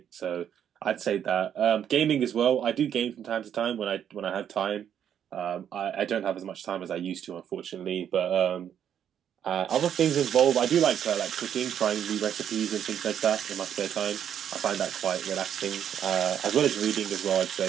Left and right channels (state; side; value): quieter; left; 9.2 dB